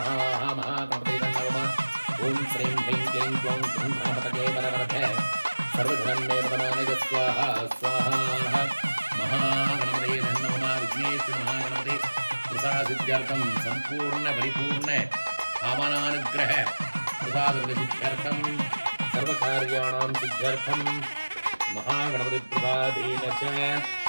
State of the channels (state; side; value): inverted; both; correlation -1.00